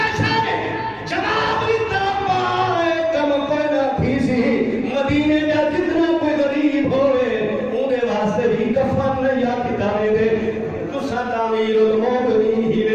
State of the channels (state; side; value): identical; both; correlation 1.00